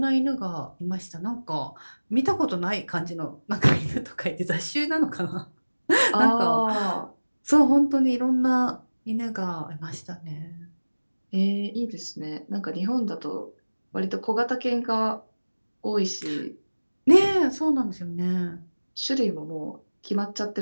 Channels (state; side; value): inverted; both; correlation -1.00